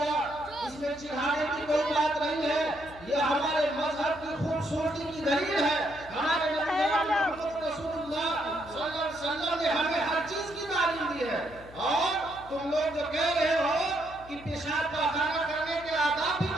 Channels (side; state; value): left; noise; hum, 20 dB below the sound